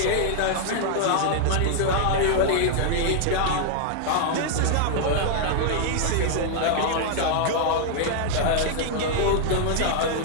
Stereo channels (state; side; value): different; both; correlation -0.01